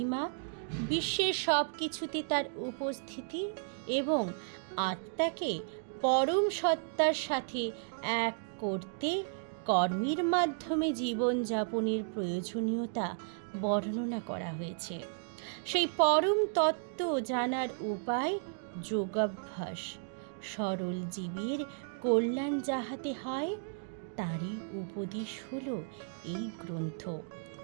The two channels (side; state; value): left; silent; digital silence